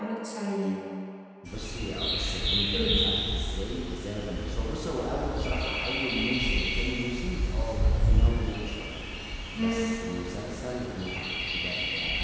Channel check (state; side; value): identical; both; correlation 1.00